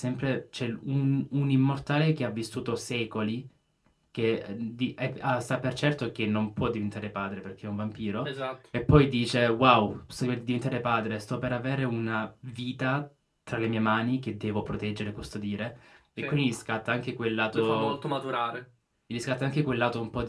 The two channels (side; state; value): both; identical; correlation 1.00